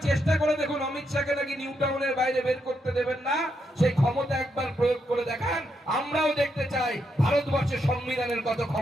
চেষ্টা করে দেখুন, অমিত শাহকে নাকি নিউ টাউনের বাইরে বের করতে দেবেন না, সেই ক্ষমতা একবার প্রয়োগ করে দেখান। আমরাও দেখতে চাই ভারতবর্ষের সংবিধানের কত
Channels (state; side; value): normal; both; correlation 0.80